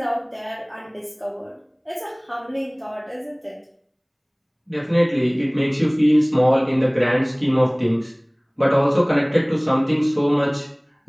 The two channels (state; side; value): identical; both; correlation 1.00